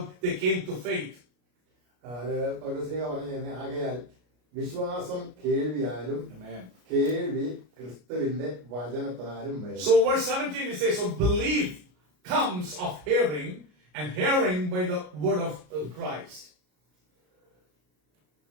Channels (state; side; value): late; left; 33 ms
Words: they came to faith. അത് പൗലോസ്ലീഹ പറഞ്ഞു, ആകയാൽ വിശ്വാസം കേൾവിയാലും കേൾവി ക്രിസ്തുവിന്റെ വചനത്താലും വരും. So verse 17 it says, so belief comes of hearing, and hearing by the word of Christ.